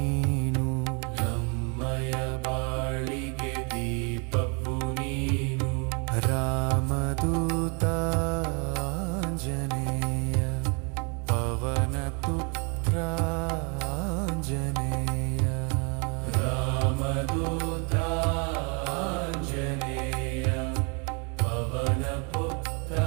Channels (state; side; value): quieter; left; 34.8 dB